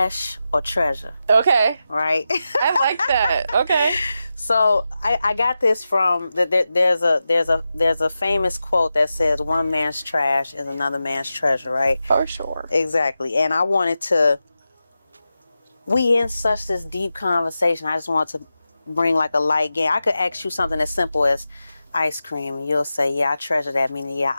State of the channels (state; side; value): inverted; both; correlation -0.91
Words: or Treasure. Okay. Right? I like that. Okay. So I got this from there's a famous quote that says, one man's trash is another man's treasure, right? For sure. Exactly. And I wanted we in such this deep conversation, I just wanted to bring like a light game. I could ask you something as simple as ice cream, and you'll say, yeah, I treasure that, meaning, yeah,